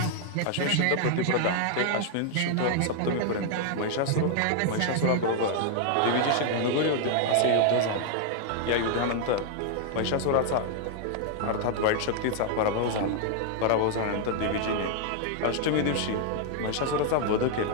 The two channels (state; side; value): different; both; correlation 0.00